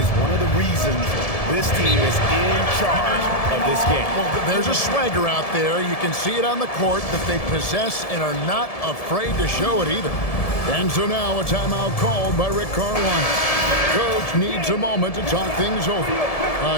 one of the reasons this team is in charge of this game. Well, there's a swagger out there. You can see it on the court that they possess and are not afraid to show it either. And so now a timeout called by Rick Carlisle. Coach needs a moment to talk things over.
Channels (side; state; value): right; late; 1.7 ms